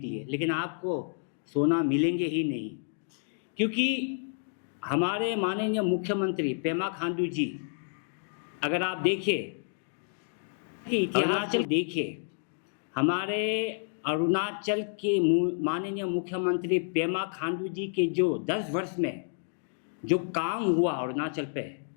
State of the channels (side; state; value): right; silent; digital silence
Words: लेकिन आपको सोना मिलेंगे ही नहीं। क्योंकि हमारे माननीय मुख्यमंत्री पेमा खांडू जी, अगर आप देखें कि इतिहास देखिए, हमारे अरुणाचल के माननीय मुख्यमंत्री पेमा खांडू जी के जो 10 वर्ष में जो काम हुआ अरुणाचल पे,